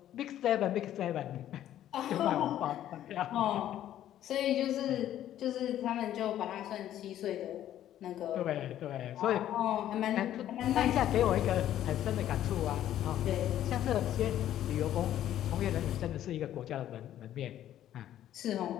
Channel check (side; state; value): right; quieter; 11.9 dB